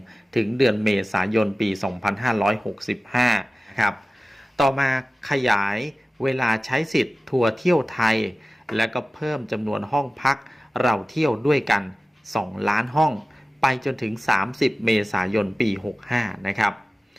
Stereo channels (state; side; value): normal; both; correlation 0.96